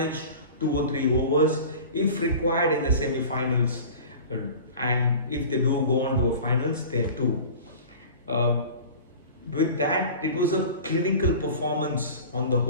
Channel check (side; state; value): both; inverted; correlation -0.38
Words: 2 or 3 overs if required in the semi-finals, and if they do go on to the finals, there too. With that, it was a clinical performance on the